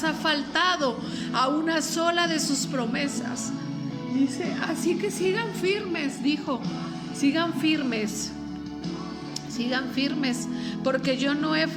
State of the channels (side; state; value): both; identical; correlation 1.00